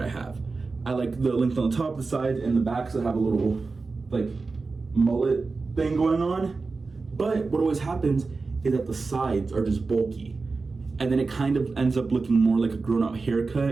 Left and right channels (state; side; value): quieter; left; 4.1 dB